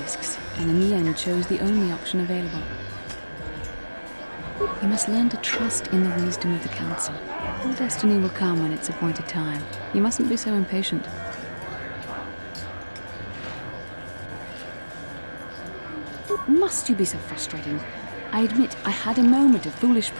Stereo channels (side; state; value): both; inverted; correlation -1.00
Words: and in the end chose the only option available. You must learn to trust in the wisdom of the Council. Your destiny will come when it's appointed time. You mustn't be so impatient. Must you be so frustrating? I admit I had a moment of foolish